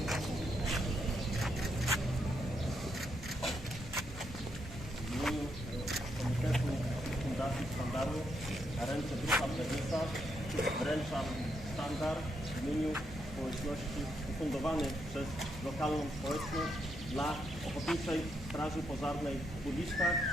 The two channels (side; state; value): both; normal; correlation 0.78